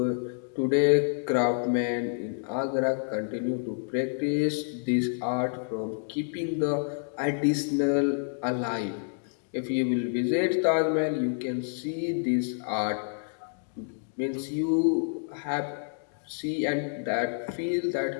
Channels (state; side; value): silent; right; digital silence